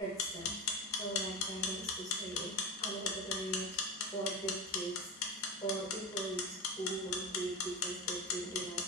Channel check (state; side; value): normal; both; correlation 0.22